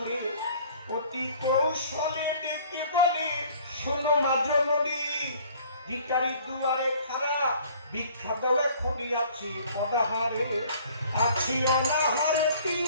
অতি কৌশলে ডেকে বলে, শোনো মা জননী, ভিখারি দুয়ারে খাড়া, ভিক্ষা দাও এখনই আছি অনাহারে, আছি অনাহারে 3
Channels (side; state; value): both; inverted; correlation -0.53